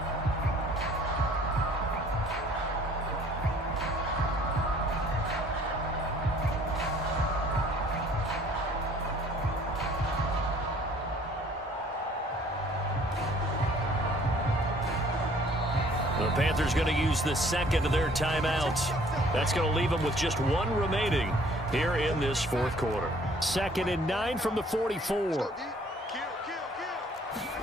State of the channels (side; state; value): both; normal; correlation 0.56